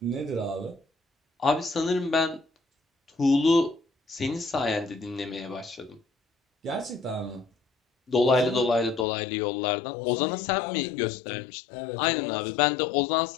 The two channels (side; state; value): right; drops out; at 9.1 s